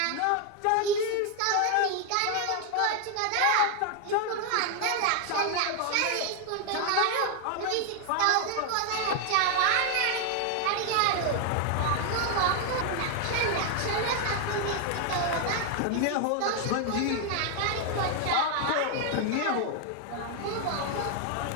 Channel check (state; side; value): different; both; correlation 0.00